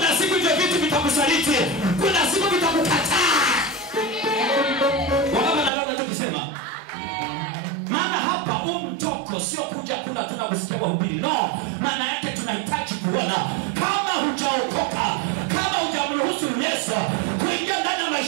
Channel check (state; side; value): drops out; left; at 5.7 s